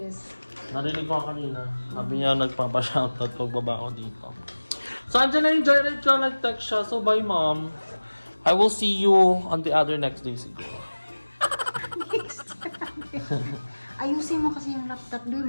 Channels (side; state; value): both; inverted; correlation -1.00